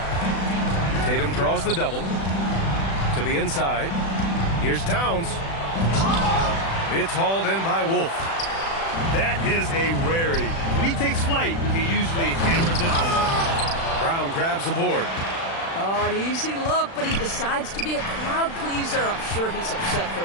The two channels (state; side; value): late; right; 36 ms